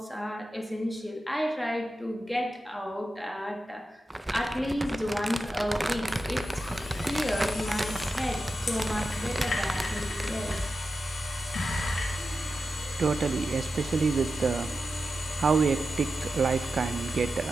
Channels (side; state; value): both; normal; correlation 0.91